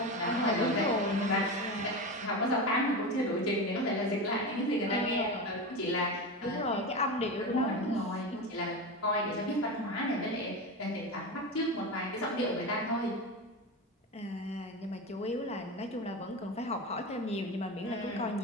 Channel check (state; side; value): normal; both; correlation 0.22